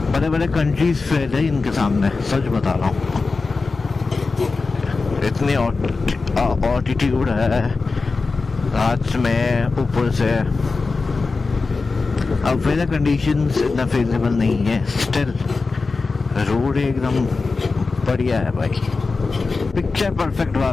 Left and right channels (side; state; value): right; quieter; 4.1 dB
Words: बड़े बड़े कंट्रीज फेल है इनके सामने, सच बता रहा हूँ। इतनी ऑल्टीट्यूड है रात में ऊपर से, अब वेदर कंडीशंस इतना फेवरेबल नहीं है, स्टिल रोड एकदम बढ़िया है भाई, पिक्चर परफेक्ट